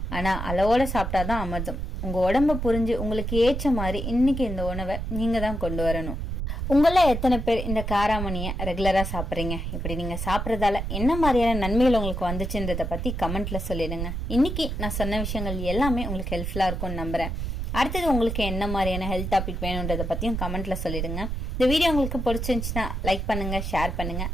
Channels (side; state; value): right; noise; rumble, 3 dB below the sound